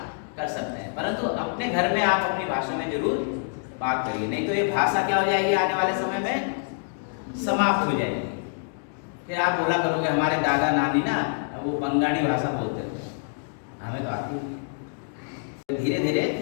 कर सकते हैं, परंतु अपने घर में आप अपनी भाषा में जरूर बात करिए, नहीं तो ये भाषा क्या हो जाएगी, आने वाले समय में समाप्त हो जाएगी। फिर आप बोला करोगे हमारे दादा नानी ना वो बंगाली भाषा बोलते थे, हमें तो आती है। धीरे धीरे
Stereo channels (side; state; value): right; silent; digital silence